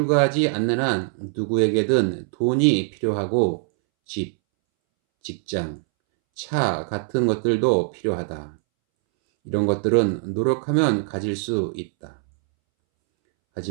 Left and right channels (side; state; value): left; silent; 64 dB below the other